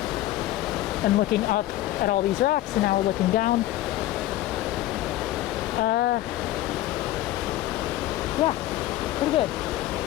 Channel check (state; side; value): quieter; right; 15.2 dB